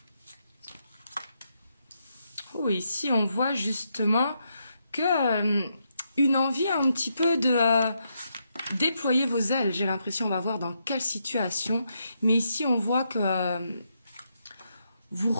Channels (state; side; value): inverted; both; correlation -0.80